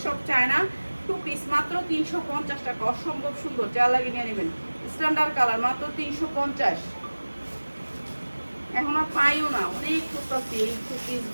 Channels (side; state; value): both; inverted; correlation -1.00